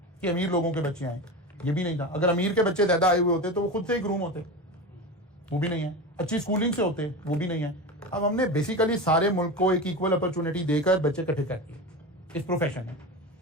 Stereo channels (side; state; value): both; normal; correlation 0.25